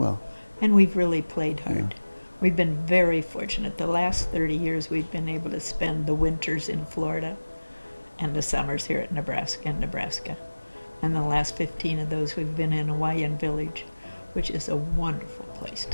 And we've really played hard. We've been very fortunate. The last 30 years we've been able to spend the winters in Florida and the summers here at Nebraska. And the last 15 of those we've been in Lakeside Village, which is a wonderful place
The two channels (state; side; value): inverted; both; correlation -1.00